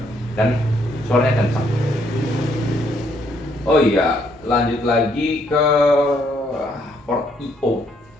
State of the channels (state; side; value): normal; both; correlation 0.70